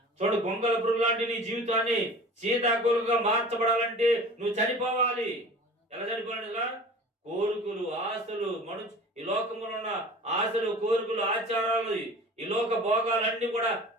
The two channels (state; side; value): normal; both; correlation 0.41